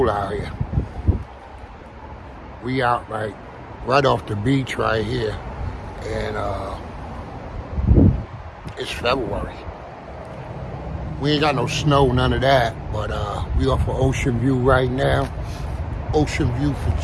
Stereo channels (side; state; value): both; identical; correlation 1.00